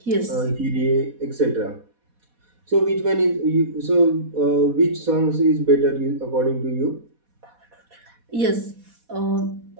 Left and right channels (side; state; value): left; late; 4.1 ms